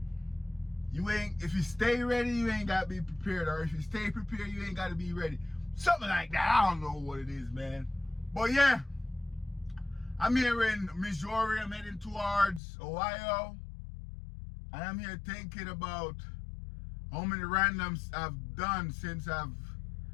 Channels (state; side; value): drops out; right; at 12.6 s